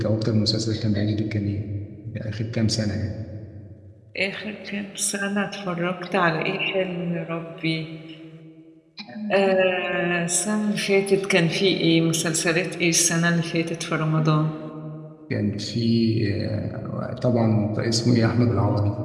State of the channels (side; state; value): both; identical; correlation 1.00